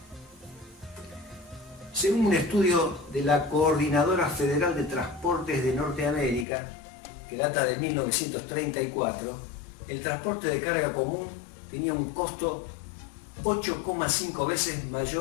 Según un estudio de la Coordinadora Federal de Transportes de Norteamérica, que data de 1934, el transporte de carga común tenía un costo 8,5 veces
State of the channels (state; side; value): drops out; right; at 6.5 s